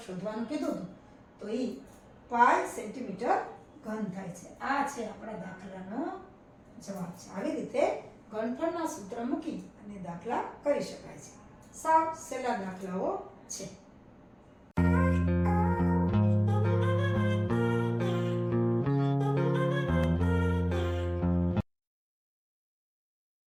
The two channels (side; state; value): both; identical; correlation 1.00